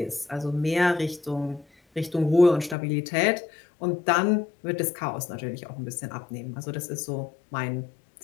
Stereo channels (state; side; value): drops out; right; at 2.8 s